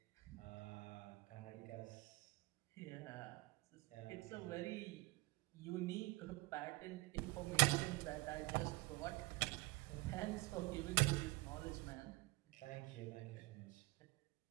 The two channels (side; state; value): left; quieter; 23.6 dB